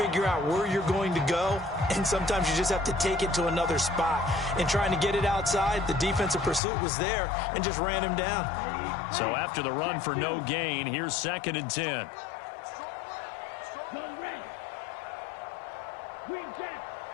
out where you're going to go, and sometimes you just have to take it to another spot. In trying to get it outside, the defensive pursuit was there and just ran him down. So after the run for no gain, here's 2nd and 10.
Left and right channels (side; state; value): right; drops out; at 6.6 s